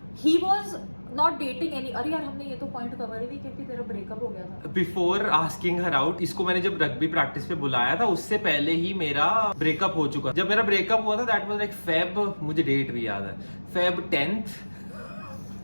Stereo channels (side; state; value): both; inverted; correlation -1.00